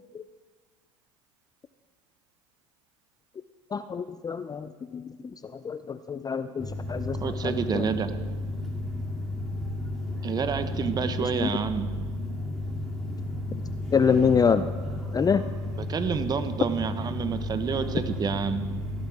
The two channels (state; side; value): normal; both; correlation 0.65